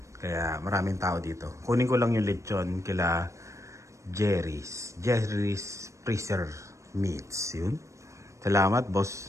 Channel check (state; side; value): late; left; 0.15 ms